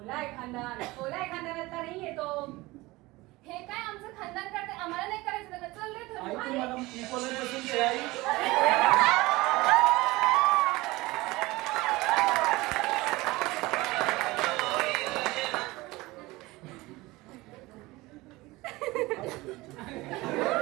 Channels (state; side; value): quieter; left; 20.7 dB